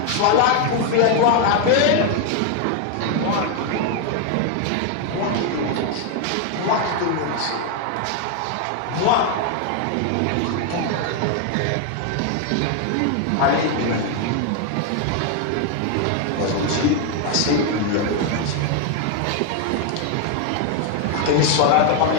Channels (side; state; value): both; different; correlation 0.01